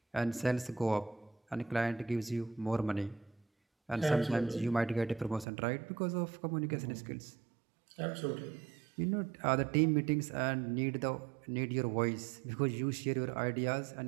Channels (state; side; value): drops out; left; at 5.5 s